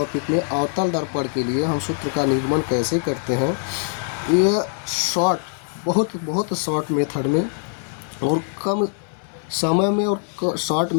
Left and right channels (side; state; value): right; silent; 64 dB below the other